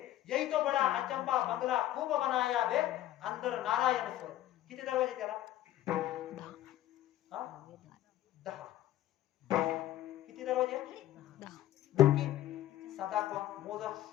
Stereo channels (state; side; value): quieter; right; 13.4 dB